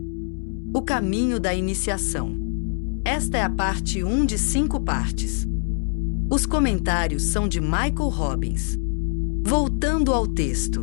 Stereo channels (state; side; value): silent; right; 63 dB below the other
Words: O caminho da iniciação. Esta é a parte 1 de 5 partes. Os comentários são de Michael Robbins. Voltando ao